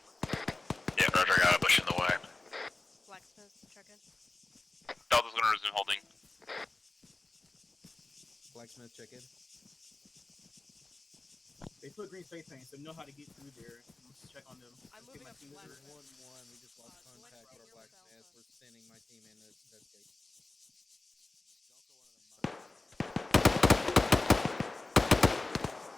Yeah, roger, I got a bush in the way. Blacksmith, check in. Delta's gonna resume holding. Blacksmith, check in. They put green face paint, so know how to get through there. check on them. I'm Get moving my up to team black. over. 1-1. We just lost contact with our blacksmith. We're sending my team in to investigate.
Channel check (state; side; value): quieter; right; 3.2 dB